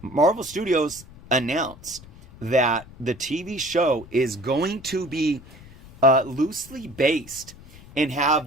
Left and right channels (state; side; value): noise; left; rumble, 20 dB below the sound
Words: Marvel Studios announced that the TV show is going to be loosely based and have